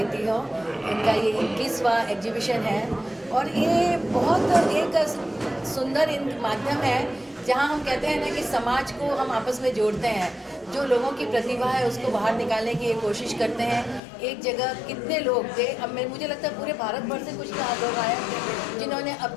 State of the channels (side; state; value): right; drops out; at 14.0 s